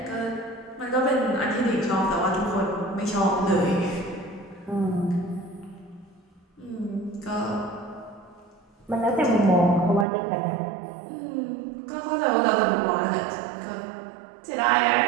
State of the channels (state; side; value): drops out; left; at 10.1 s